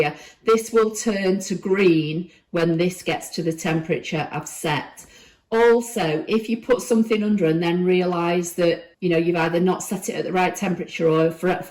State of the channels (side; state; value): both; identical; correlation 1.00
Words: This will turn to green when this gets to the temperature I've set. Also, if you put something under and then realise that, you've either not set it at the right temperature, or